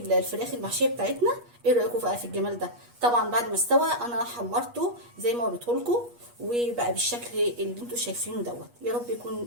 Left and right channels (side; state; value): left; late; 8.4 ms